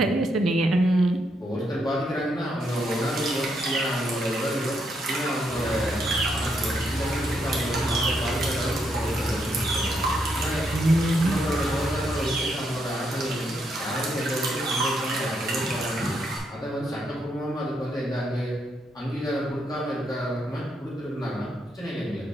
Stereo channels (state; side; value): normal; both; correlation 0.77